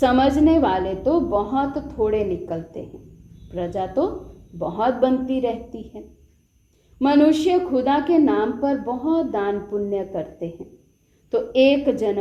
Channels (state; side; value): identical; both; correlation 1.00